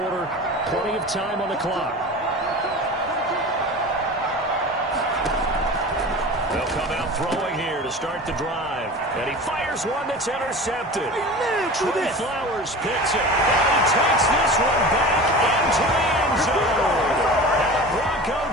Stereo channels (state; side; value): normal; both; correlation 0.35